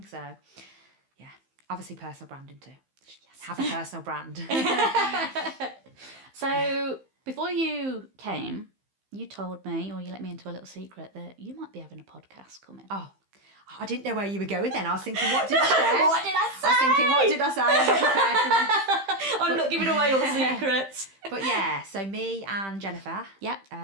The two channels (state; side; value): late; left; 15 ms